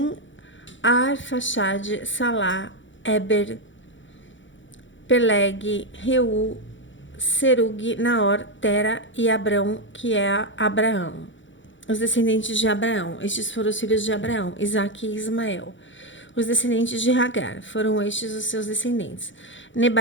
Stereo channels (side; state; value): right; late; 0.55 ms